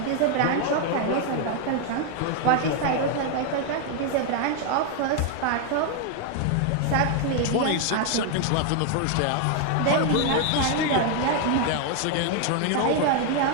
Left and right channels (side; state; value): both; different; correlation 0.00